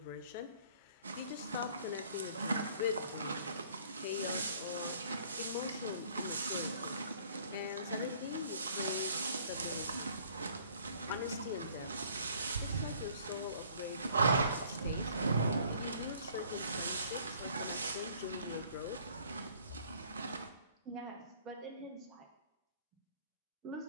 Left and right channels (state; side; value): inverted; both; correlation -0.58